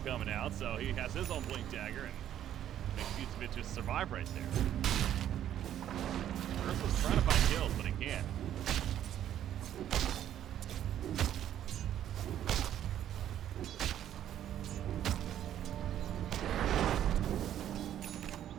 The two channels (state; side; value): quieter; left; 11.0 dB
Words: out, so he has his own blink dagger and makes Vucevic just survive right there. Ursa's trying to find kills, but he can't.